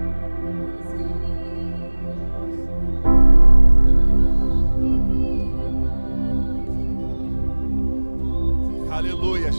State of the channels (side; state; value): both; inverted; correlation -1.00